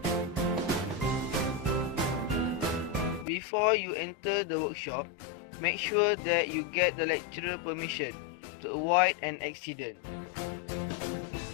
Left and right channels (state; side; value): drops out; right; at 3.2 s